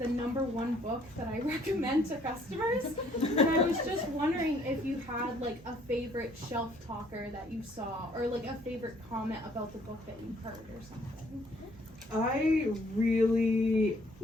#1 book that I recommend to customers. And I was just wondering if you had like a favorite shelf talker that you saw, or like a favorite comment about the book that you heard or something. I really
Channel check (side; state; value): both; normal; correlation 0.62